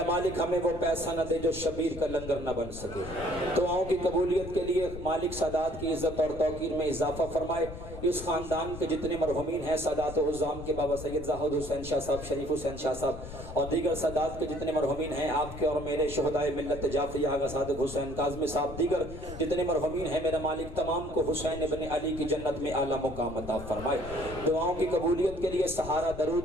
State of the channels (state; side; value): noise; left; rumble, 11 dB below the sound